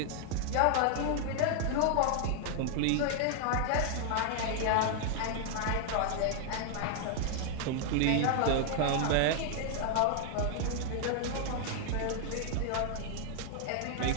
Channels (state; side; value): different; both; correlation 0.00